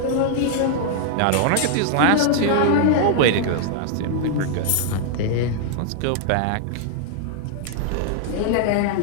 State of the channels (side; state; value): both; different; correlation -0.01